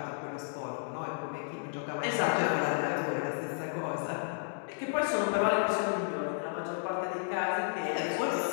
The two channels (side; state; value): right; silent; digital silence